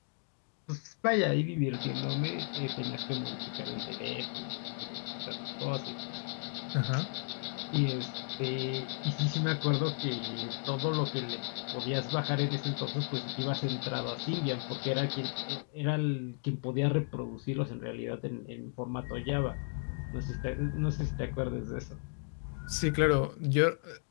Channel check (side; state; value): right; silent; 55 dB below the other